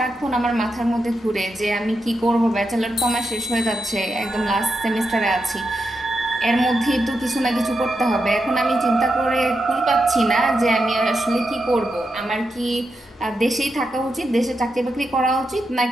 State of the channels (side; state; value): both; normal; correlation 0.86